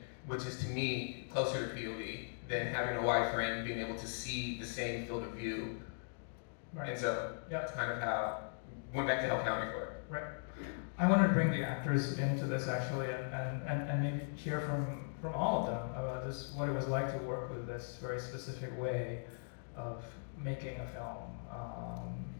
which is to me closer to POV than having a wide frame, being able to see the same field of view. Right. And so that's kind of how went back to Hell County for it. Right. I wanted to bring the actors into this actually, and maybe hear from all of them about this, what it was like to work with this very specific way of making a film.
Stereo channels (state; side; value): silent; right; digital silence